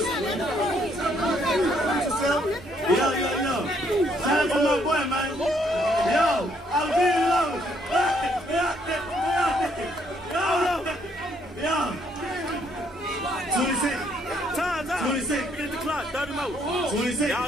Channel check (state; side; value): normal; both; correlation 0.69